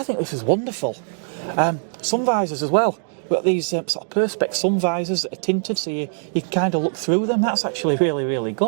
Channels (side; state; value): left; silent; 64 dB below the other